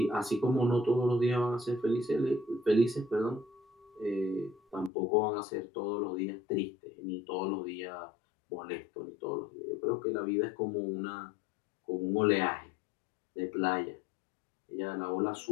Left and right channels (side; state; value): right; drops out; at 4.9 s